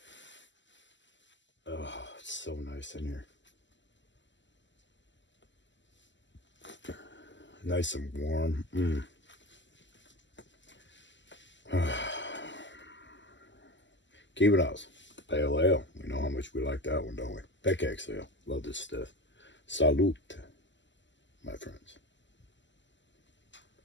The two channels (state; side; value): late; right; 0.54 ms